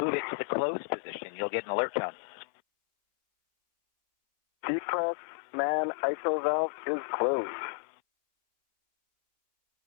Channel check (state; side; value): silent; right; 57 dB below the other